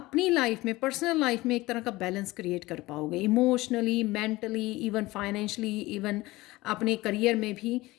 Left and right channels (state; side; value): quieter; right; 19.6 dB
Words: लाइफ में, पर्सनल लाइफ में एक तरह का बैलेंस क्रिएट कर पाओगे, emotionally, mentally, even financially, even अपने करियर में भी